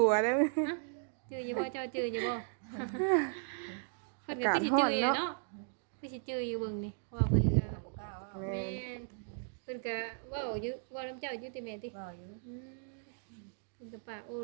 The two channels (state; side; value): silent; left; digital silence